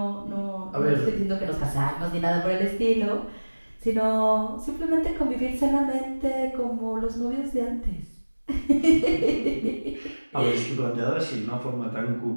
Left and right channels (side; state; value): both; inverted; correlation -1.00